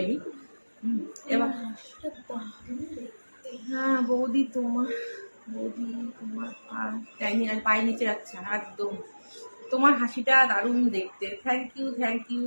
আমি। এবার হ্যাঁ বৌদি, তোমার পায়ের নিচে যাচ্ছে একদম। তোমার হাসিটা দারুণ দেখতে, থ্যাংক ইউ, থ্যাংক ইউ।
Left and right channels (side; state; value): both; inverted; correlation -1.00